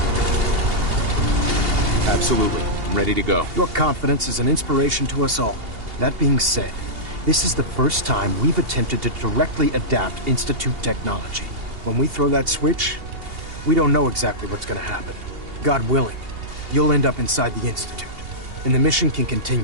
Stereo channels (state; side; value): late; left; 2.8 ms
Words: Absolutely. I'm ready to go. Your confidence is an inspiration to us all. That being said, this is the first time we've attempted to directly adapt Institute technology. When we throw that switch, we don't know exactly what's gonna happen. God willing, you'll end up inside the Institute, and the mission can